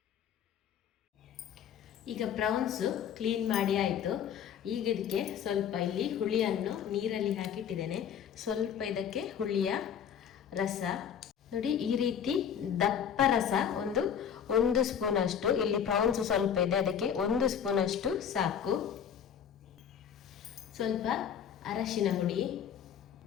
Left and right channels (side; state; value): right; quieter; 8.4 dB